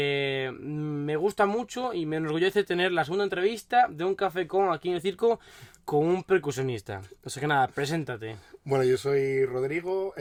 gusta mucho y me enorgullece tener la segunda entrevista de Un Café con aquí en el circo con un percusionista. O sea que nada, preséntate. Bueno, yo soy Rodrigo,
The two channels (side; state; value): both; identical; correlation 1.00